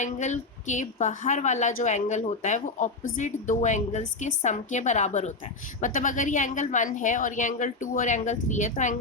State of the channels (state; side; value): quieter; right; 3.5 dB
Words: के बाहर वाला जो एंगल होता है वो ऑपोजिट दो एंगल्स के सम के बराबर होता है। मतलब अगर ये एंगल 1 है और ये एंगल 2 और एंगल 3 है, तो